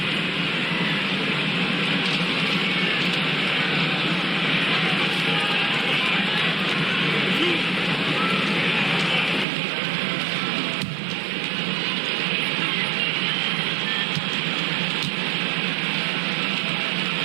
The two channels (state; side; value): drops out; left; at 9.5 s